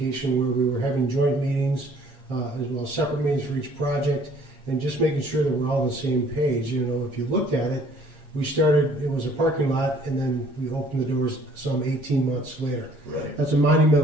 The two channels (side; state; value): left; late; 7.4 ms